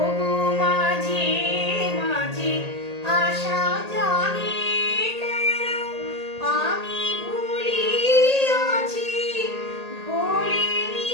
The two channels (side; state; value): left; late; 1.8 ms